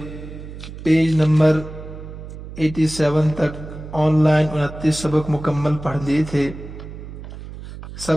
پیج نمبر 87 تک آن لائن 29 سبق مکمل پڑھ لیے تھے۔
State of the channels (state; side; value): noise; right; hum, 12 dB below the sound